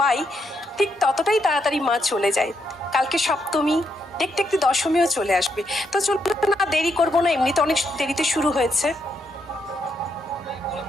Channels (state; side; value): normal; both; correlation 0.79